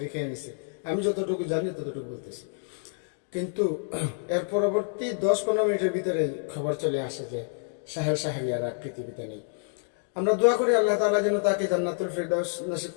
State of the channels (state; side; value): silent; right; 59 dB below the other